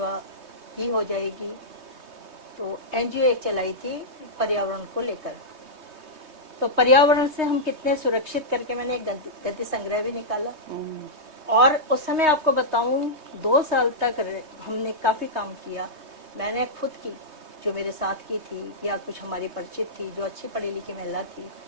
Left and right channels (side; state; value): left; late; 3.2 ms